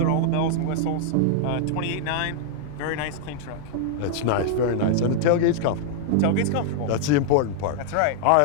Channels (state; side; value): different; both; correlation -0.01